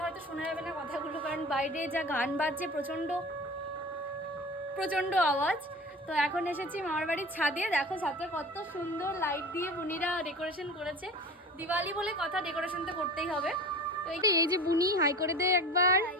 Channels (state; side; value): normal; both; correlation 0.36